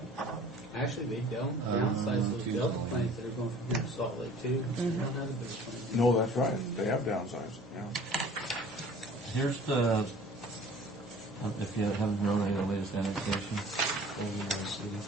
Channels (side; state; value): both; normal; correlation 0.48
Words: Actually, they downsize those Delta planes that are going from here to Salt Lake too. Not a big plane. No, that's right. They have downsized. Yeah. Here's the, if you haven't known the latest annexation over the city.